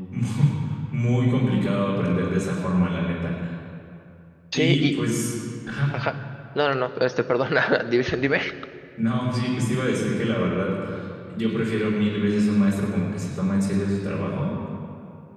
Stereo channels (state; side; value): identical; both; correlation 1.00